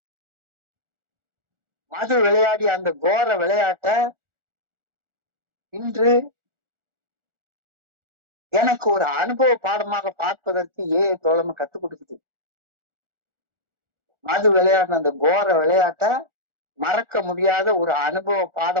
மது விளையாடி அந்த கோர விளையாட்ட இன்று எனக்கு ஒரு அனுபவ பாடமாக பார்ப்பதற்கு தோழமை கத்துக் கொடுக்குது. மது விளையாடின அந்த கோர விளையாட்ட மறக்க முடியாத ஒரு அனுபவ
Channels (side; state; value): left; late; 1.4 ms